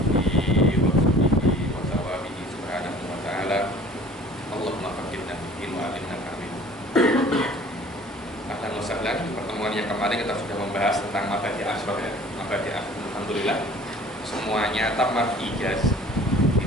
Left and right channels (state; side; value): normal; both; correlation 0.48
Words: Pertemuan yang kemarin kita sudah membahas tentang mabadi asyraf ya. Mabadi alhamdulillah semuanya tamat ijaz di